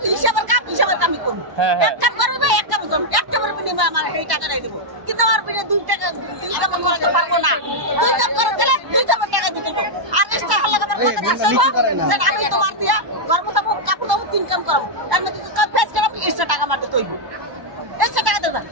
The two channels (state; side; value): late; left; 1.1 ms